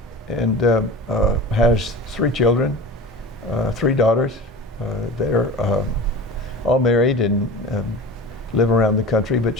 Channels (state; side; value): normal; both; correlation 0.34